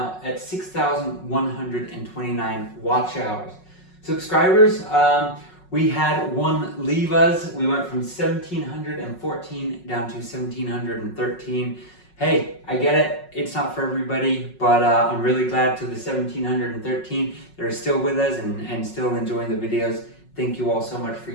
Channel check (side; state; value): right; late; 5.4 ms